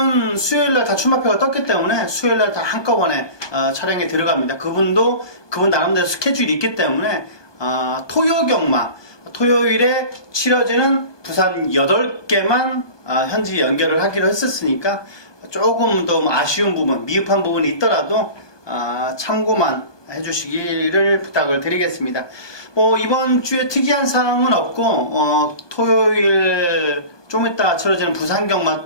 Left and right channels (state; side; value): late; right; 1.2 ms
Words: 수요일날 다 출마표가 떴기 때문에 수요일날 다 한꺼번에 촬영에 들어갑니다. 그분 나름대로 스케줄이 있기 때문에 토요 경마, 토요일에 치러지는 부산 8개만 현지 연결을 하기로 했었으니까 조금 더 아쉬운 부분, 미흡한 부분이 있더라도 참고만 해주시기를 부탁을 드리겠습니다. 이번 주에 특이한 사항은 없고, 토요일 좀 이따 치러지는 부산 경마